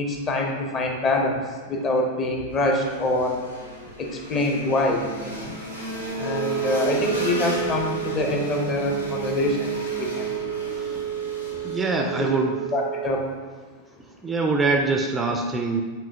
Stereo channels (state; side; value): normal; both; correlation 0.20